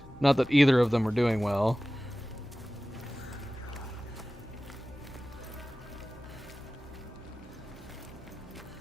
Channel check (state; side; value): normal; both; correlation 0.96